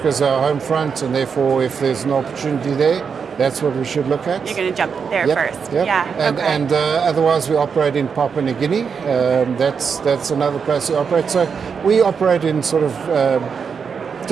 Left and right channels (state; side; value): quieter; left; 6.2 dB